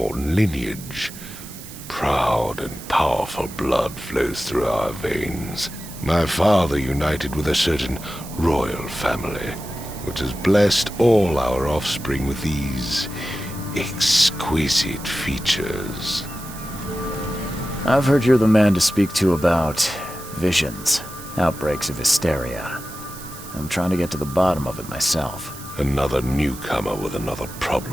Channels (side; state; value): right; noise; hiss, 15 dB below the sound